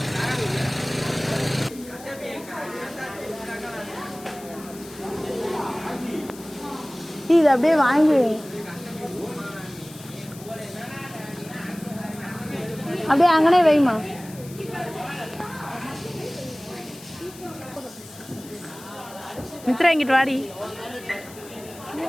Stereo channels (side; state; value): left; noise; hiss, 18 dB below the sound